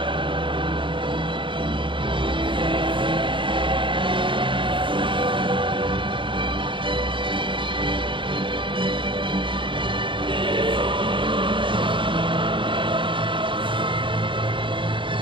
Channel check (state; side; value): late; left; 0.24 ms